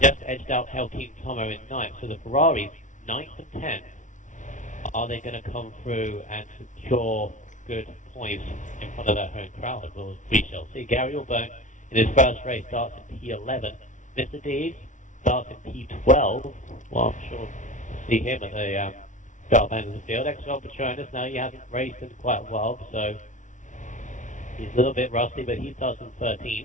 Just edged out Helkeem Tomo in 9th. So the Ferraris, 9th and 10th. Are they going to come through and secure good points in front of their home crowd? Well, we shall see. Gary Allbone in his first race starts in P11. Mr. D starts in P12. Well, I'm sure we'll see him at the sharp end of the field. XRL Patronus, now he hasn't raced in quite a while, so he's a little bit rusty, but he starts in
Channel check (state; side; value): late; right; 0.37 ms